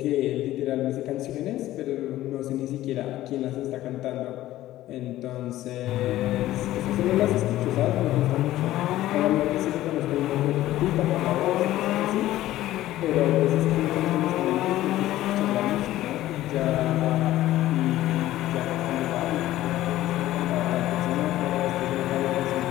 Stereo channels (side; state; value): right; quieter; 14.9 dB